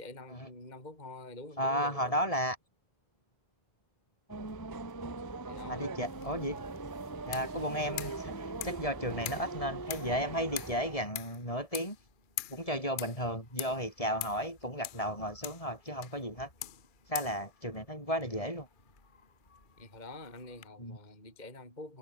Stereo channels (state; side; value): late; right; 2.3 ms